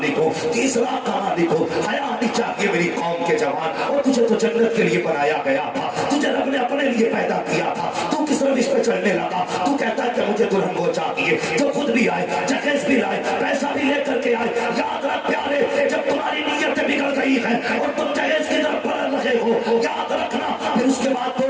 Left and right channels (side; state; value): both; identical; correlation 1.00